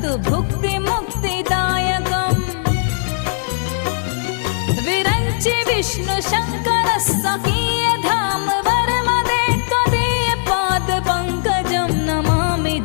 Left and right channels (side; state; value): right; silent; 67 dB below the other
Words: भुक्ति मुक्तिदायकम् विरंचि विष्णु शंकर स्वकीय धाम वर्मदे त्वदीय पाद पंकजं नमामि